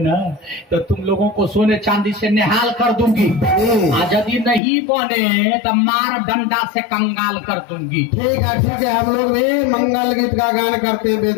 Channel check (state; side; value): drops out; right; at 4.6 s